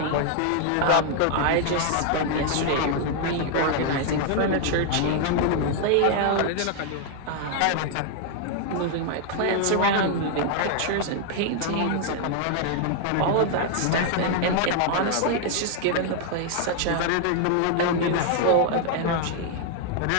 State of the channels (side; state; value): both; different; correlation 0.00